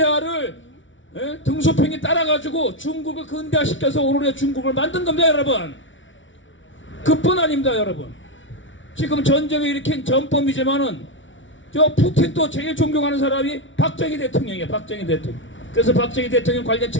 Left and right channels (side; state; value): right; late; 0.56 ms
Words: 등소평이 따라가지고 중국을 근대화시켜서 오늘의 중국을 만든 겁니다, 여러분. 그뿐 아닙니다, 여러분. 지금 전쟁을 일으킨 전범이지만은 저 푸틴도 제일 존경하는 사람이 박정희 대통령이에요. 박정희 대통령. 그래서 박정희 대통령 관련